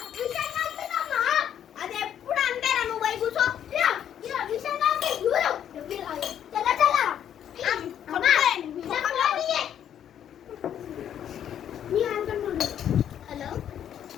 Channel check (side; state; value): right; quieter; 9.7 dB